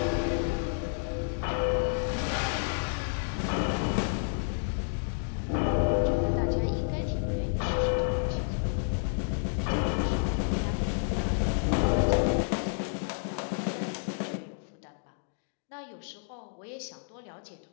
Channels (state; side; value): silent; right; digital silence